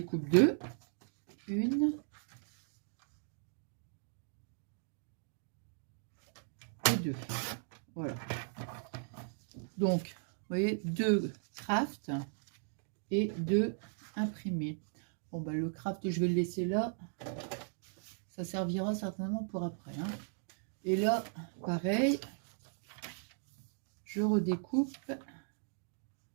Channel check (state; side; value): silent; left; digital silence